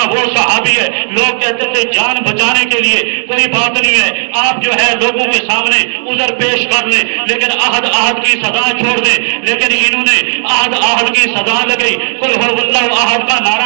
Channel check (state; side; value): silent; left; digital silence